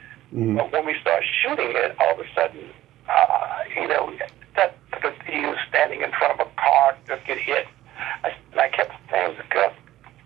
Mm. But when we started shooting it, all of a sudden, that he was standing in front of a car, just get hit. And I kept saying to Gus,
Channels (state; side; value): quieter; left; 14.6 dB